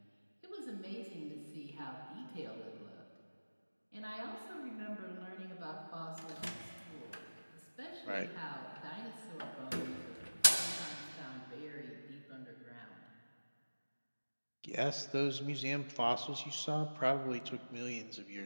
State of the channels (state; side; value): inverted; both; correlation -1.00